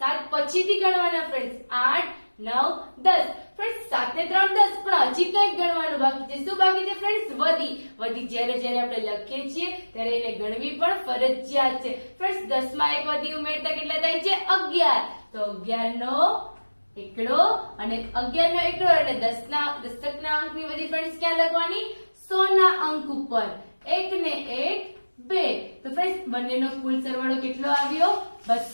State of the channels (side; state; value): both; inverted; correlation -1.00